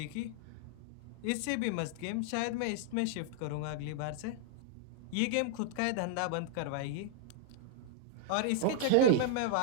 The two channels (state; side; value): different; both; correlation -0.01